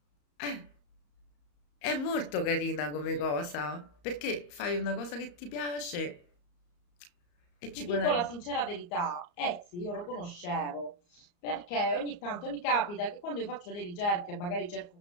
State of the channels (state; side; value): late; right; 34 ms